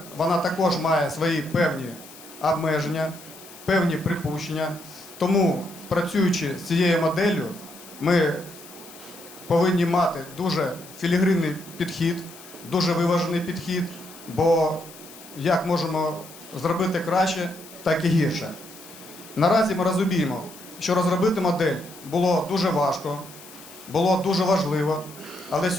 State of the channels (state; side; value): noise; left; hiss, 19 dB below the sound